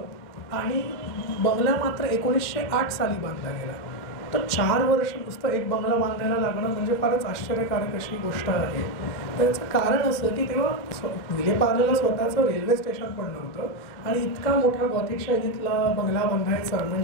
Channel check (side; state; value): right; late; 2.1 ms